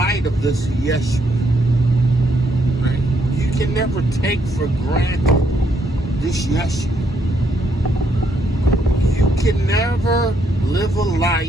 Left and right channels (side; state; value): both; normal; correlation 0.73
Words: of this Yashar. Right? You can never take for granted this Yashar. You can never live a